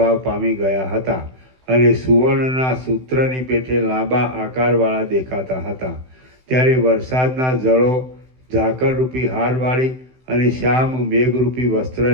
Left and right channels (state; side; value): late; left; 16 ms